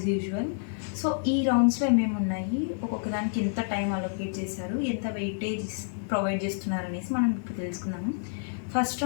యూజువల్. సో ఈ రౌండ్స్లో ఏమేమి ఉన్నాయి, ఒక్కొక్క దానికి ఎంత టైం అలొకేట్ చేశారు, ఎంత వెయిటేజ్ ప్రొవైడ్ చేస్తున్నారు అనేసి మనం ఇప్పుడు తెలుసుకున్నాము. ఫస్ట్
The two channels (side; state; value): right; silent; 59 dB below the other